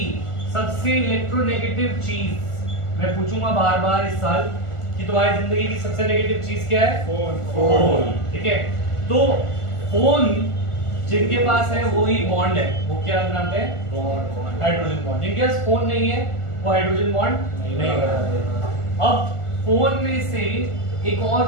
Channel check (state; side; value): late; right; 1.4 ms